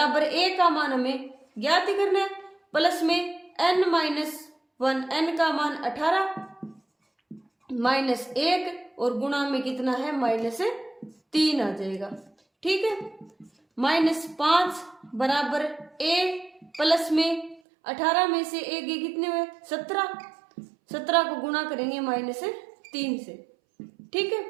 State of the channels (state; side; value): drops out; left; at 17.6 s